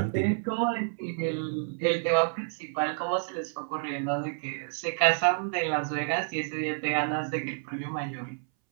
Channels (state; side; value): silent; left; 58 dB below the other